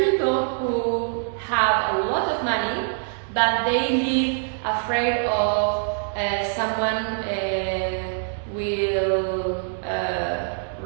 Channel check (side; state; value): left; silent; digital silence